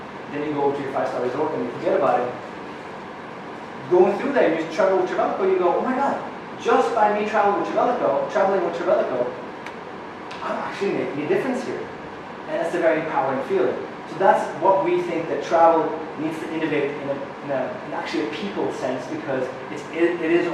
then you go to your 5-star resort and you forget about it. Going through there, you travel with Trevelico, you go, oh my God, just by me traveling with Trevelico, I'm actually making a difference here. And that's a very empowering feeling. So that's what we think that travel needs to innovate in actually a people sense, because it is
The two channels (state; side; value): identical; both; correlation 1.00